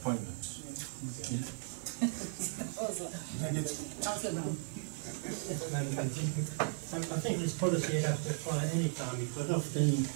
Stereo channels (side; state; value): left; silent; 54 dB below the other